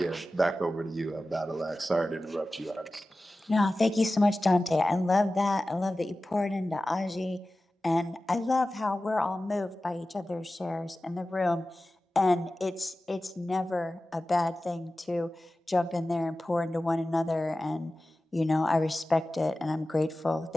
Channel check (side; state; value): both; normal; correlation 0.95